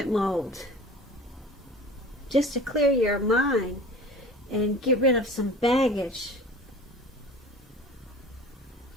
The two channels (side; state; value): both; normal; correlation 0.40